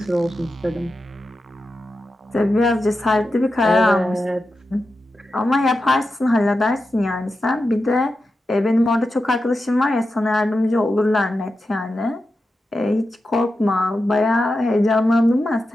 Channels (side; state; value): both; normal; correlation 0.90